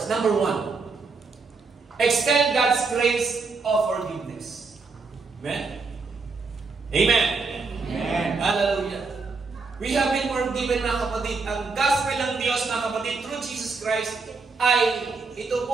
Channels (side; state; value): left; quieter; 4.3 dB